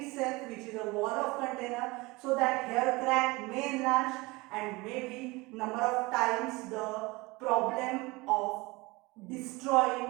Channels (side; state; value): left; quieter; 23.4 dB